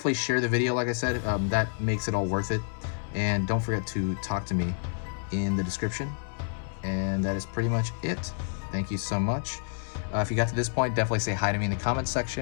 share the video, like I said. That makes it all worth it. And don't forget to talk to me in the description. And that is pretty much it. Thank you so much. If you got to this point, definitely say hi to me in the comments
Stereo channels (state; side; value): silent; right; 59 dB below the other